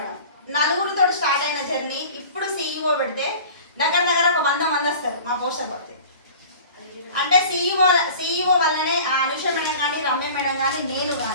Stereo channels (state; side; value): inverted; both; correlation -0.42